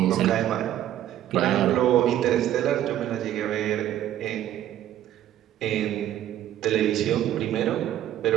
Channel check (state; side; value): quieter; left; 12.0 dB